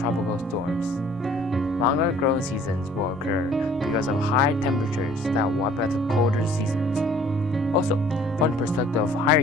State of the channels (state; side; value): normal; both; correlation 0.55